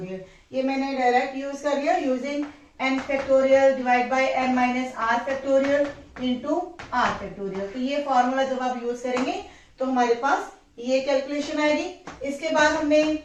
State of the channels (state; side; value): identical; both; correlation 1.00